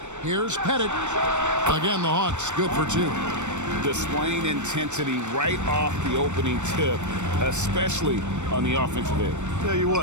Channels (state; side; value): late; left; 0.84 ms